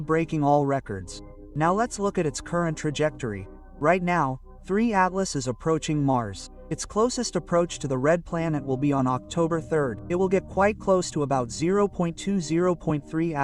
breaking all records. Now let's look at its current trajectory. Right now, 3 Atlas is approaching Mars. Its closest approach to the red planet will be on October 3rd. It will get quite close to about 0.20.3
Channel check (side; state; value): both; identical; correlation 1.00